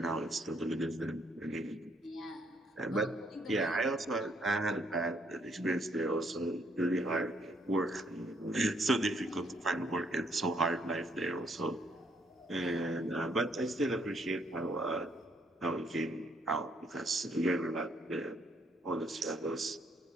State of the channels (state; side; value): normal; both; correlation 0.70